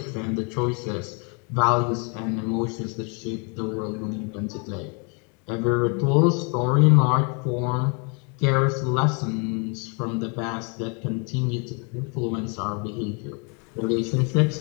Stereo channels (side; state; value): right; quieter; 35.2 dB